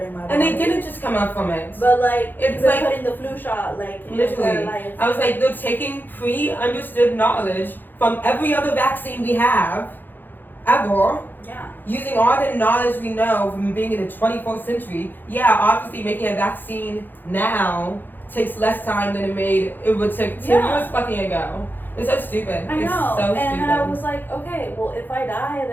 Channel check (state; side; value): late; right; 0.090 ms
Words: in my body. And they didn't just come up from it. But like, it's like like putting the flu shot, like literally. I was like, they're taking pre-understood knowledge from every other vaccine we have, ever. Yeah. Using all the knowledge we know from being in the 21st century. Yeah, obviously making a vaccine now takes less time than it would take 10 years fucking ago. It's so stupid. I know. It's so and stupid. then I was like, okay, well, if I die,